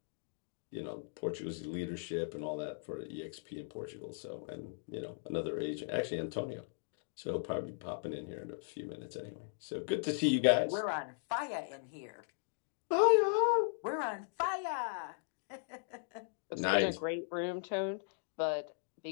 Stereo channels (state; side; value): silent; right; digital silence